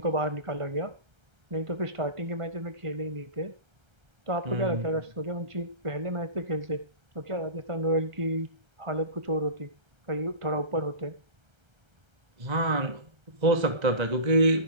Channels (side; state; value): left; late; 1.3 ms